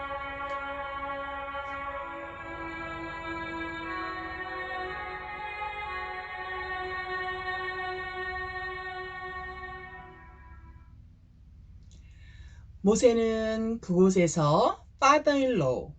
모세는 그곳에서 father-in-law,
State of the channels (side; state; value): both; identical; correlation 1.00